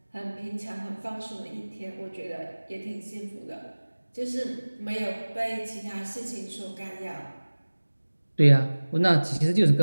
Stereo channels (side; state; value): both; inverted; correlation -1.00